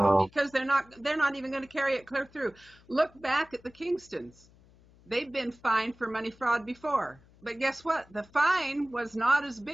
because they're not even going to carry it clear through. Look back at the Kingstons. They've been fined for money fraud before. But guess what? The fine was not as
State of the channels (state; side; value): noise; left; hum, 27 dB below the sound